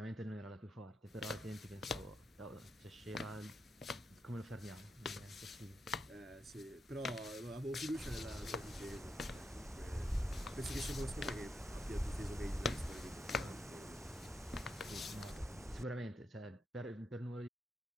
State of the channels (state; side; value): normal; both; correlation 0.84